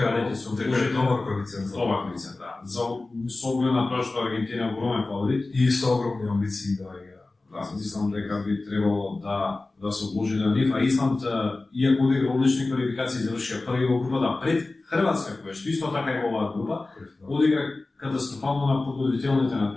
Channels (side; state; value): right; quieter; 3.2 dB